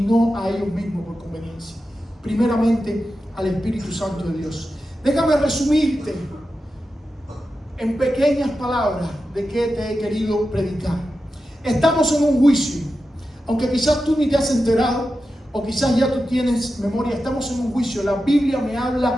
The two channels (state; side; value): normal; both; correlation 0.91